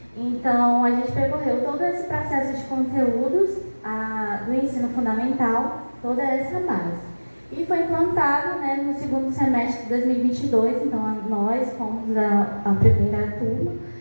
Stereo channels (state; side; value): inverted; both; correlation -1.00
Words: Então, a gente percorreu todo esse processo de conteúdos do ensino fundamental, toda essa base. E foi implantado no segundo semestre de 2022, então nós fomos a primeira turma